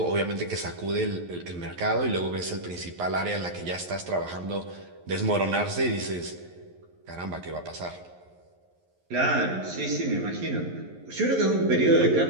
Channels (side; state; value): left; late; 11 ms